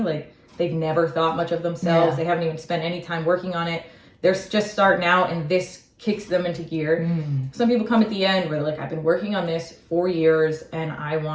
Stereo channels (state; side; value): identical; both; correlation 1.00